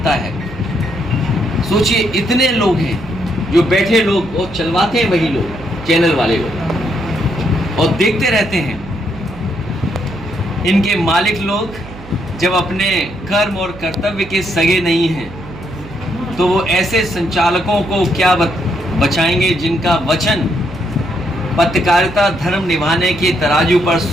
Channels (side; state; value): right; noise; hum, 17 dB below the sound